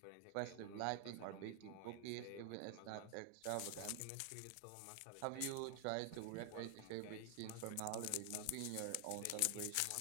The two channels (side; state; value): both; different; correlation 0.00